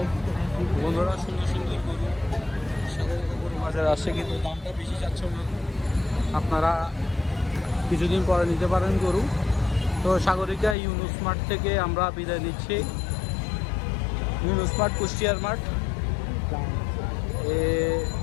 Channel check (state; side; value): drops out; right; at 10.8 s